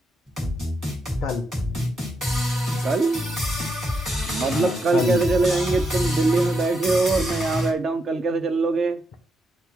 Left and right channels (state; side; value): normal; both; correlation 0.82